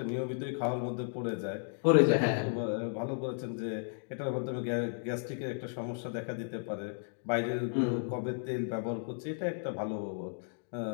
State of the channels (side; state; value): right; silent; digital silence